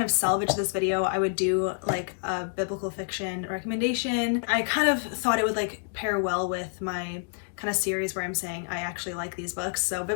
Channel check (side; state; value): right; silent; digital silence